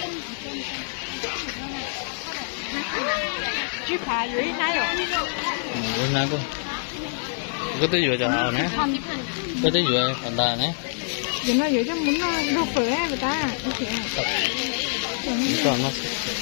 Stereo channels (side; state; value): right; silent; digital silence